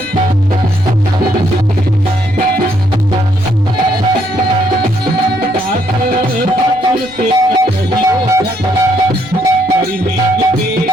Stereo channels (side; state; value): right; noise; rumble, 25 dB below the sound